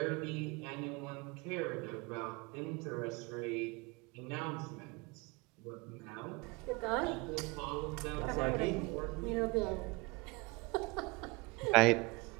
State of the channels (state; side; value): quieter; left; 24.9 dB